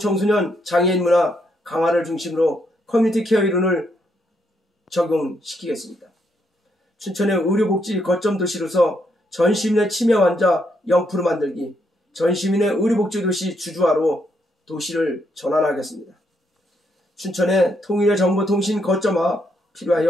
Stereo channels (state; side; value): normal; both; correlation 0.76